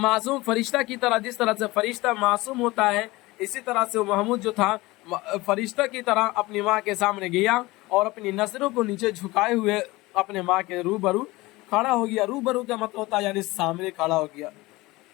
फरिश्ता की तरह, जिस तरह से फरिश्ता मासूम होता है, इसी तरह से महमूद जो था फरिश्ता की तरह अपनी माँ के सामने गया और अपनी नजरों को नीचे झुकाए हुए अपने माँ के रूबरू खड़ा हो गया। रूबरू का मतलब होता है यानी सामने खड़ा हो गया।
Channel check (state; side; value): quieter; right; 20.8 dB